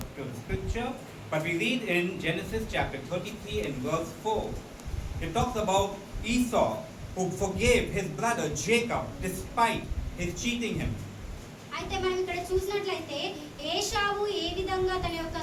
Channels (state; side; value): identical; both; correlation 1.00